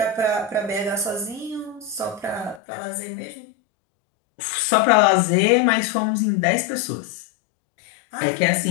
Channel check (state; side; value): drops out; right; at 2.6 s